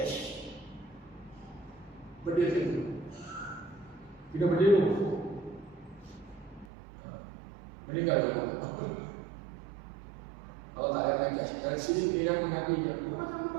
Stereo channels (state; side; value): drops out; left; at 6.7 s